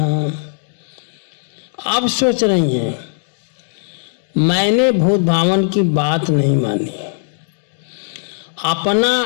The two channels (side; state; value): right; silent; digital silence